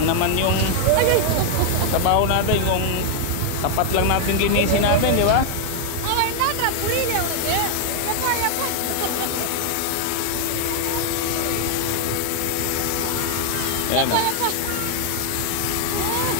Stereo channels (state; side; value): different; both; correlation 0.00